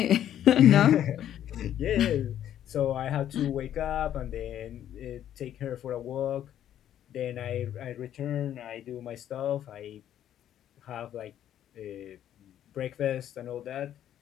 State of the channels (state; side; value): quieter; right; 11.0 dB